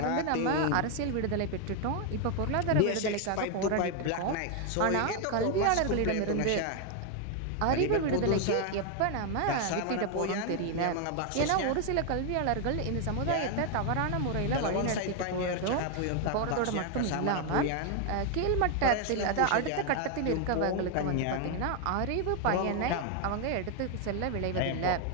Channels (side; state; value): both; different; correlation 0.00